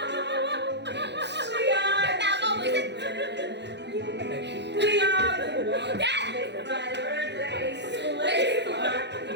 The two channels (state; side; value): late; left; 0.50 ms